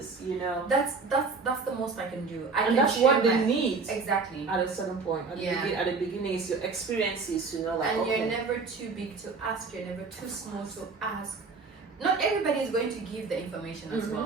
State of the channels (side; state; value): left; quieter; 4.4 dB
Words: You know, that's the most I can do. And that's what they need. Exactly. At a certain point, at the beginning, it's your experiences. You know, like and you're never too big to ask. You're never too small to ask. Not everybody is going to give the information as